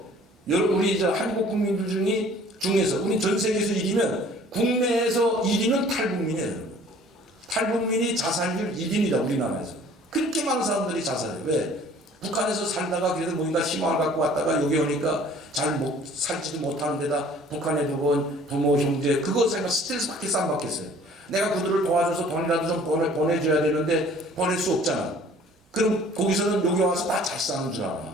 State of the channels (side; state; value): both; normal; correlation 0.53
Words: 우리 한국 국민들 중에서 우리 전 세계에서 1위면 국내에서 1위는 탈북민이에요. 탈북민이 자살률 1위입니다. 우리나라에서. 그렇게 많은 사람들이 자살해요. 왜? 북한에서 살다가 그래도 뭔가 희망을 갖고 왔다가 여기 오니까 잘 살지도 못하는 데다 북한에 두고 부모, 형제 그것 생각 스트레스 받겠어 안 받겠어요? 내가 그들을 도와줘서 돈이라도 좀 보내줘야 되는데 보낼 수 없잖아. 그럼 거기서는 여기 와서 다 잘 사는 줄